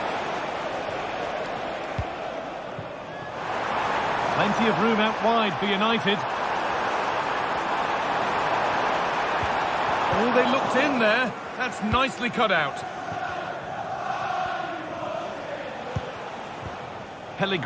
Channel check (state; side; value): identical; both; correlation 1.00